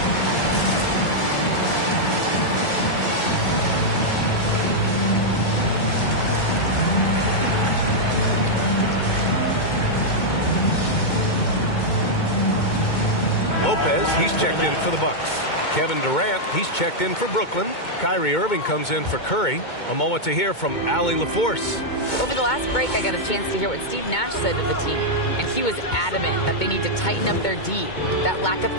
he's checked in for the Bucks. Kevin Durant, he's checked in for Brooklyn. Kyrie Irving comes in for Curry. A moment to hear from Allie LaForce. Over the last break, I got a chance to hear what Steve Nash said to the team, and he was adamant that they need to tighten up their D. That lack of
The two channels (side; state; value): right; late; 2.2 ms